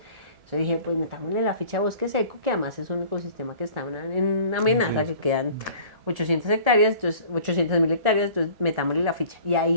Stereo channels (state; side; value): late; left; 1.7 ms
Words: Entonces dije, pues metámosle la ficha a bosque seco, que además es un ecosistema que está en amenaza, que quedan 800 hectáreas, entonces 800.000 hectáreas, entonces metámosle la ficha. Y